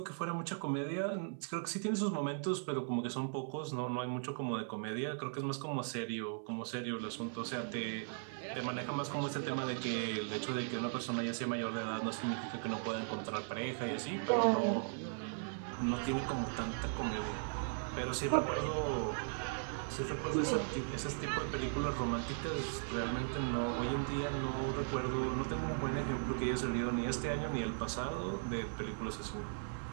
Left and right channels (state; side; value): silent; left; 52 dB below the other